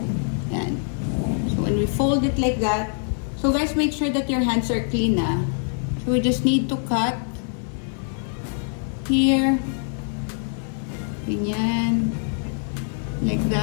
Yan. So when we fold it like that, so guys, make sure that your hands are clean, ah. So we just need to cut here, ganyan, like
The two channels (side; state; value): right; silent; digital silence